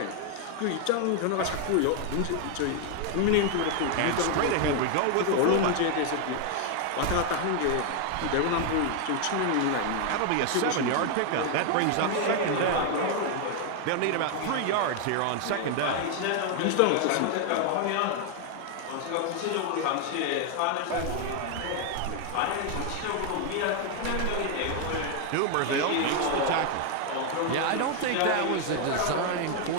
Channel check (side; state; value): both; different; correlation 0.00